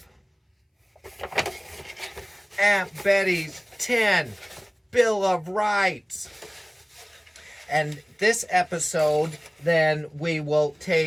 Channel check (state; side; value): identical; both; correlation 1.00